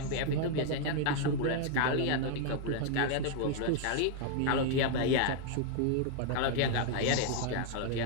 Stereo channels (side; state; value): both; different; correlation 0.00